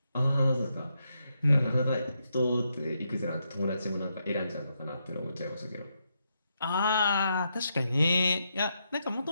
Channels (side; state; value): both; inverted; correlation -0.81